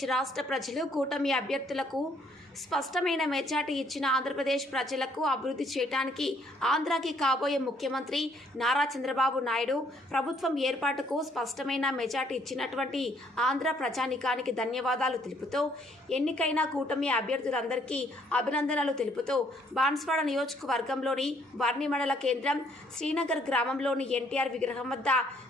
రాష్ట్ర ప్రజలు కూటమి అభ్యర్థులకు స్పష్టమైన మెజార్టీ ఇచ్చిన ఆంధ్రప్రదేశ్ ప్రజలకు అభివృద్ధి చేయడానికి ఆంధ్రాకి కాబోయే ముఖ్యమంత్రి నారా చంద్రబాబు నాయుడు ప్రభుత్వం ఏర్పాటుకు స్పష్టమైన మెజార్టీ ఇచ్చినటువంటి ఆంధ్ర ప్రజానికానికి ధన్యవాదాలు తెలుపుతూ ఎన్నికైన కూటమి అభ్యర్థులందరికీ అభినందనలు తెలుపుతూ బాన్స్వాడ నియోజకవర్గంలోని వర్ణి మండల కేంద్రం శ్రీనగర్ గ్రామంలోని ఎన్టీఆర్ విగ్రహం వద్ద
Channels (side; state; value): both; normal; correlation 0.66